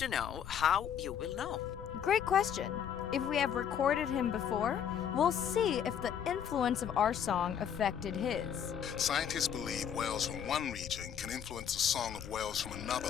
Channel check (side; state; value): right; quieter; 8.6 dB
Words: know how you will know. Great question. If we have recorded him before, we'll see if the influence of our song affected his. Scientists believe whales from one region can influence the song of whales from another